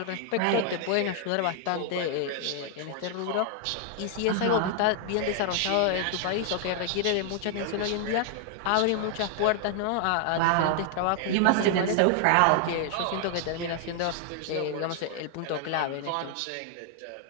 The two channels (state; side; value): different; both; correlation 0.00